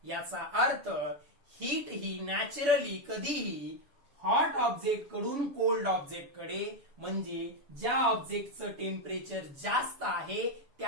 याचा अर्थ हीट ही नॅचरली कधीही हॉट ऑब्जेक्ट कडून कोल्ड ऑब्जेक्ट कडे, म्हणजे ज्या ऑब्जेक्टचं टेम्परेचर जास्त आहे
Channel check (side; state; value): left; late; 7.0 ms